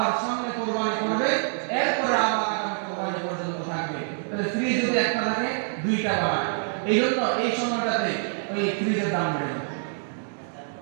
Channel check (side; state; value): left; silent; digital silence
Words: সামনে কুরবানি করবে, এরপরে আবার আগামী কুরবানি পর্যন্ত থাকবে। তাহলে ফ্রিজ যদি একটা থাকে দুইটা বাড়ায়। এই জন্য এই সময়টাতে ওই ফ্রিজের দাম বেড়ে যায়।